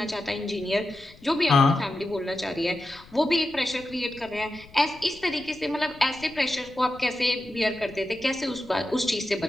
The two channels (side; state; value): left; noise; rumble, 22 dB below the sound